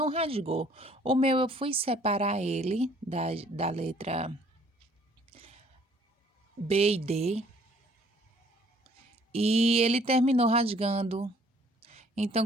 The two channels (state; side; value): normal; both; correlation 0.59